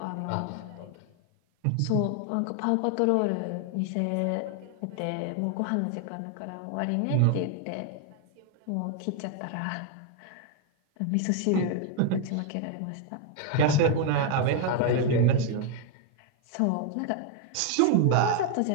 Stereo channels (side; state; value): both; different; correlation 0.01